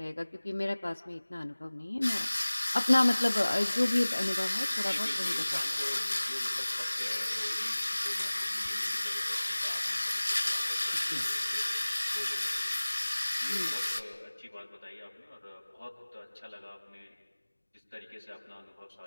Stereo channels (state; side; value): inverted; both; correlation -1.00